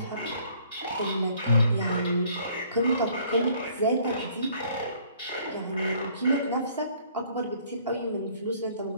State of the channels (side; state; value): both; inverted; correlation -0.59